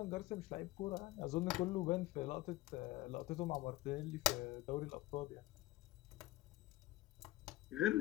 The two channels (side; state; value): right; quieter; 17.6 dB